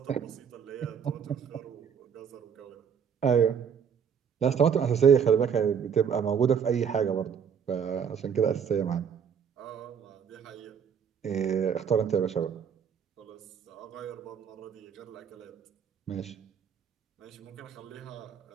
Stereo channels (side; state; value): left; quieter; 7.4 dB